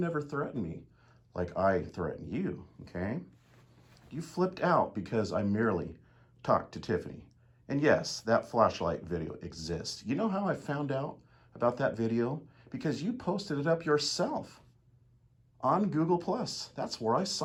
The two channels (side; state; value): both; identical; correlation 1.00